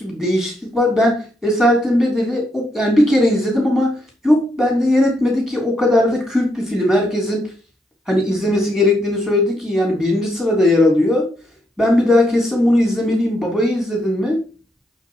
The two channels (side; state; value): both; normal; correlation 0.78